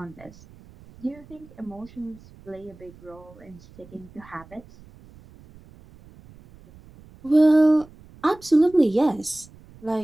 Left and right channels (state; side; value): noise; right; rumble, 23 dB below the sound